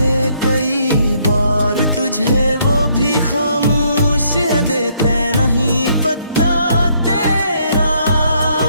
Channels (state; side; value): inverted; both; correlation -0.69